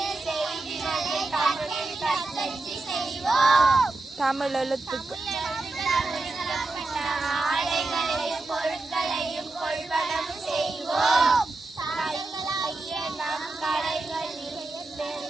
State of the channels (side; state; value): left; quieter; 3.2 dB